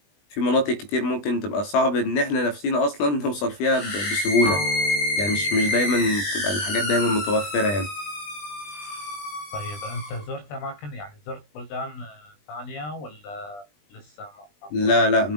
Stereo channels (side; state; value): right; late; 20 ms